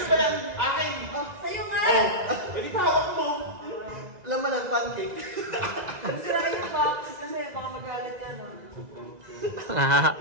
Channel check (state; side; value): late; left; 2.0 ms